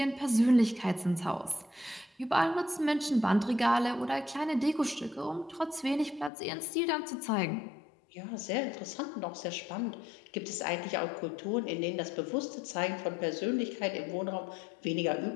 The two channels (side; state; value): right; drops out; at 6.3 s